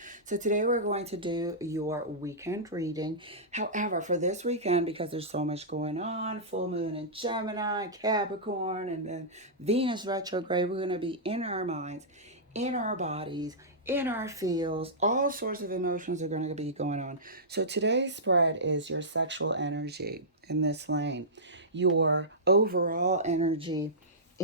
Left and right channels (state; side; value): normal; both; correlation -0.16